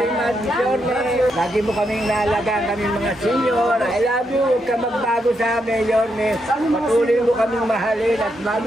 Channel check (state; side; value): normal; both; correlation 0.81